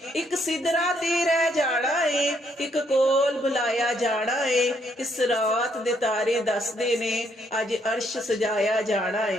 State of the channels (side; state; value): both; normal; correlation 0.72